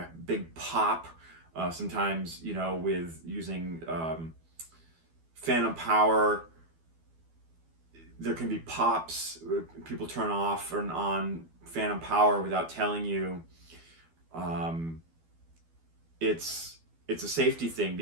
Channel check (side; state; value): left; late; 12 ms